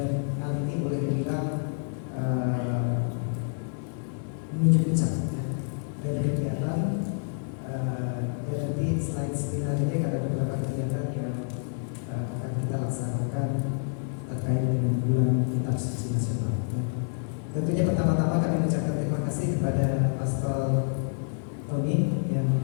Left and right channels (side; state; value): right; silent; digital silence